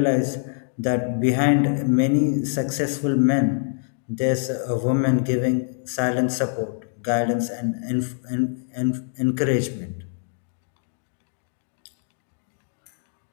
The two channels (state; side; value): silent; right; digital silence